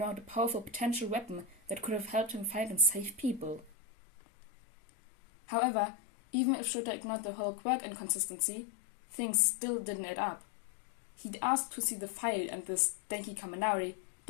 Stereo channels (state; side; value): drops out; right; at 3.7 s